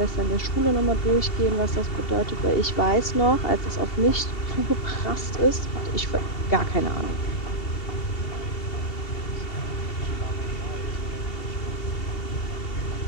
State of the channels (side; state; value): right; late; 2.7 ms